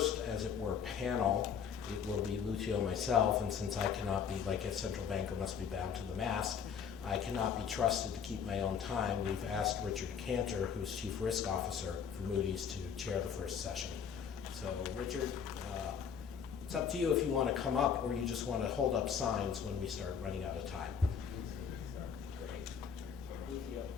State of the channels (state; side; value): quieter; right; 7.3 dB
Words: as it were, panel, it will be Lucio, myself, and since I cannot be, like a central banker must be bound to the mast, I cannot be trusted to keep my own time. We've asked Richard Cantor, who's chief risk officer for Moody's, to chair the first session. So Richard, it's up to you if you want to come up or you just want to hold up signs when we start running out of time. Great. Lucio,